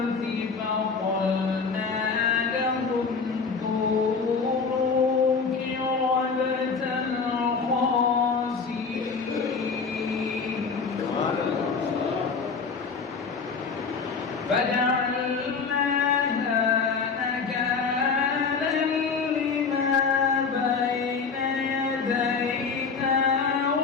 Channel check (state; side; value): quieter; right; 5.1 dB